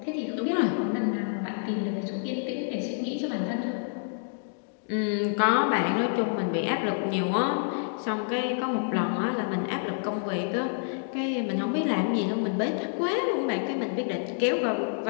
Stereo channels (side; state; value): right; silent; digital silence